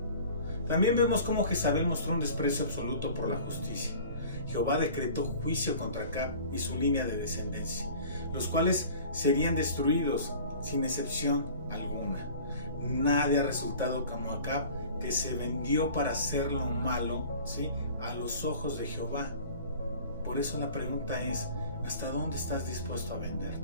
También vemos cómo Jezabel mostró un desprecio absoluto por la justicia. Jehová decretó juicio contra Acab y su línea de descendencia, los cuales serían destruidos sin excepción alguna. Nadie ha resultado como Acab, que se vendió para hacer lo malo, ¿sí?, a los ojos de Jehová. Por eso la pregunta es: ¿hasta dónde estás dispuesto a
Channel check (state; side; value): inverted; both; correlation -0.44